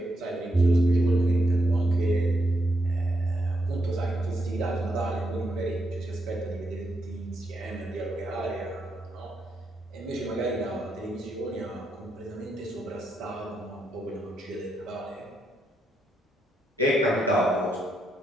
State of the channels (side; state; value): both; normal; correlation 0.81